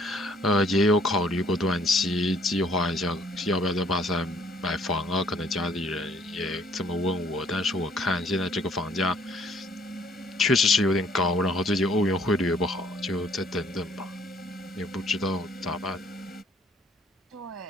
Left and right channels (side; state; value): both; normal; correlation 0.61